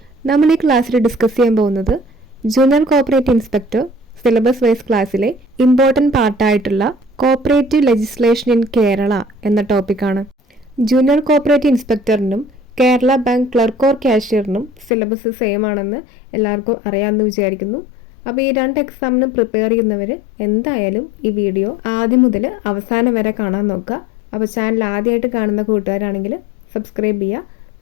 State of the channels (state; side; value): drops out; right; at 14.9 s